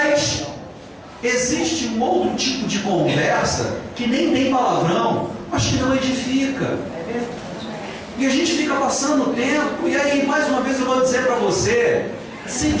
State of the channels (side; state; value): both; identical; correlation 1.00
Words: existe um outro tipo de conversa que nem tem palavrão, mas que não edifica. E a gente fica passando o tempo, e aí mais uma vez eu vou dizer para você: se